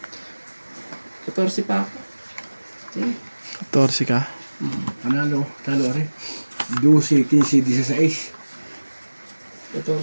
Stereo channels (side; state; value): both; inverted; correlation -1.00